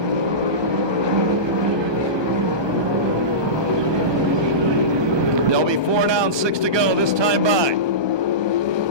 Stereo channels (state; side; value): late; left; 1.2 ms